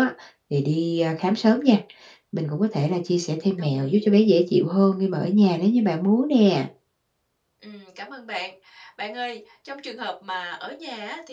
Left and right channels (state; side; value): identical; both; correlation 1.00